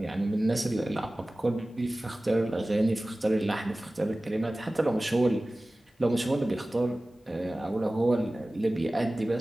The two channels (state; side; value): normal; both; correlation 0.97